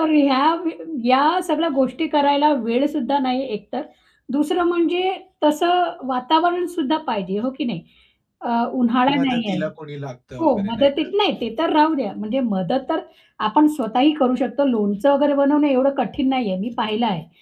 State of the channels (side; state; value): both; identical; correlation 1.00